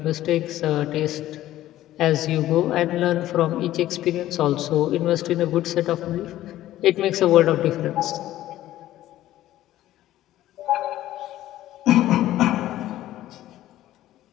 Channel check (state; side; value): quieter; right; 14.1 dB